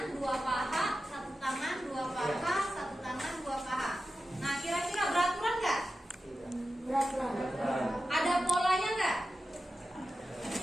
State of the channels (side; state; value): both; normal; correlation 0.92